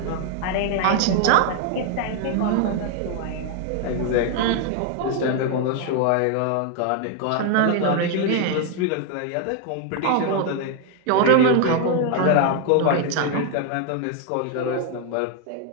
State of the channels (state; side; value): different; both; correlation 0.01